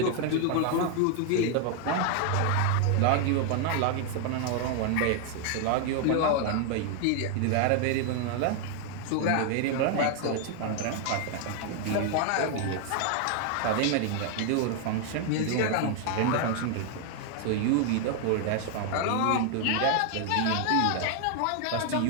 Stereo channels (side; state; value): both; different; correlation 0.00